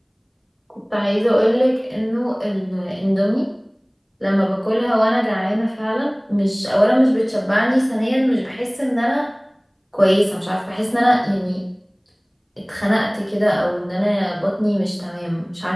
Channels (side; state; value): both; identical; correlation 1.00